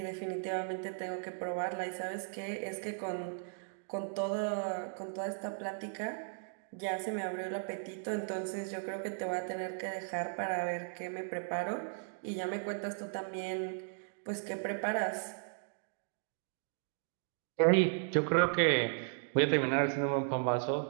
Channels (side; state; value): left; silent; digital silence